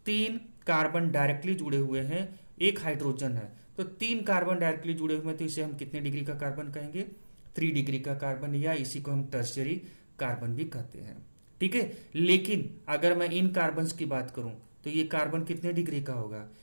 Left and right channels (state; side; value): inverted; both; correlation -1.00